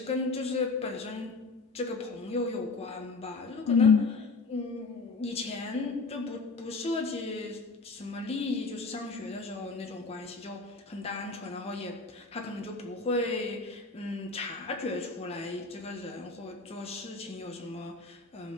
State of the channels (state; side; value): quieter; right; 3.9 dB